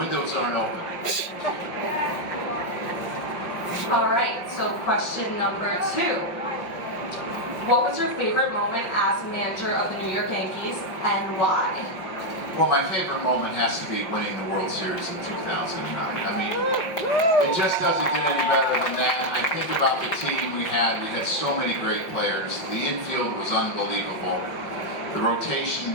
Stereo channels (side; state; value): right; late; 5.4 ms